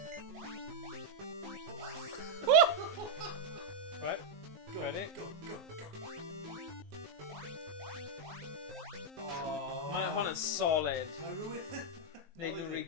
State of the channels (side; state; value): left; late; 19 ms